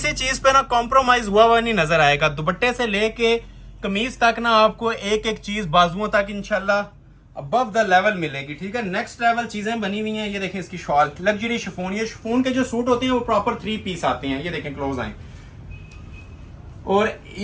चीज पे ना कॉम्प्रोमाइज हुआ नहीं नजर आएगा। दुपट्टे से लेके कमीज तक ना आपको एक एक चीज बाजुओं तक इंशाल्लाह अबव द लेवल मिलेगी, ठीक है। नेक्स्ट लेवल चीजें बनी हुई हैं। ये देखें इसकी शॉल, लग्जरी शिफॉन। ये शिफॉन के जो सूट होते हैं वो प्रॉपर 3 पीस आते हैं। ये देखें क्लोज आए। और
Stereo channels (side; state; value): both; identical; correlation 1.00